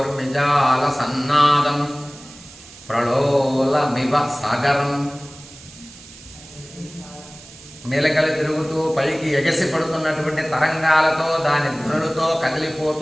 సన్నాదం ప్రళోలమివ సాగరం. మెలకలు తిరుగుతూ పైకి ఎగసి పడుతున్నటువంటి తరంగాలతో దాని ధ్వనులతో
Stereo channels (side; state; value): right; noise; hiss, 20 dB below the sound